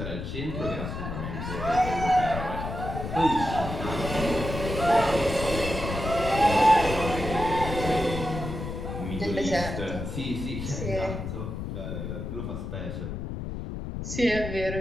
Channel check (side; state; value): left; noise; rumble, 5 dB below the sound